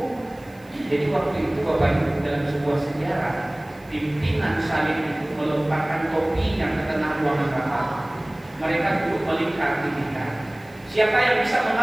Jadi waktu itu Bapak Ibu dalam sebuah sejarah, pimpinan salib itu melemparkan topinya ke tengah ruangan rapat. Mereka duduk melingkar di tingkat. Siapa yang bisa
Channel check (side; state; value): right; noise; hiss, 29 dB below the sound